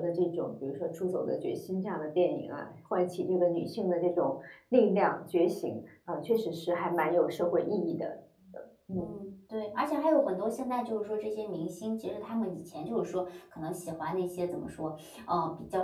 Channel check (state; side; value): identical; both; correlation 1.00